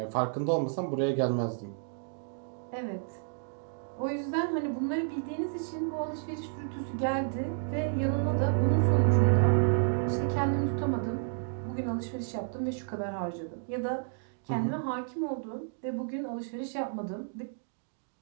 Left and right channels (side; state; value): left; silent; digital silence